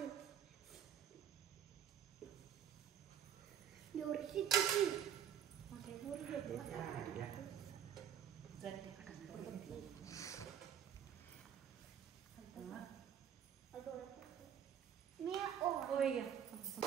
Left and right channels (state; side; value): quieter; left; 9.2 dB